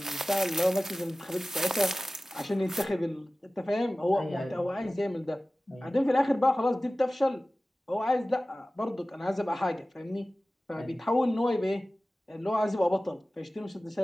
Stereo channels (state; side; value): normal; both; correlation 0.97